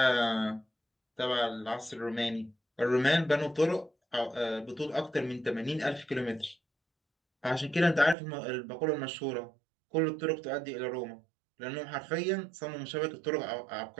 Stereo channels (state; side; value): drops out; left; at 8.2 s